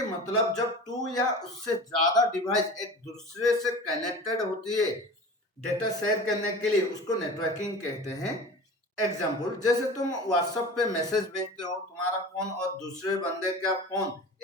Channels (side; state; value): both; normal; correlation 0.36